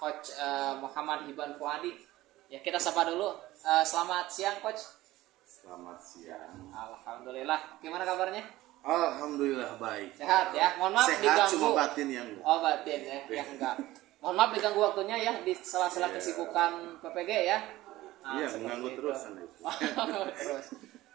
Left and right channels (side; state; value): left; quieter; 16.9 dB